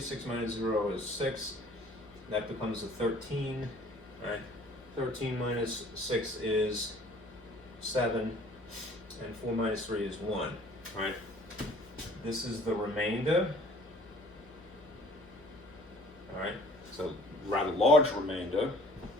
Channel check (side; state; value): left; noise; hum, 23 dB below the sound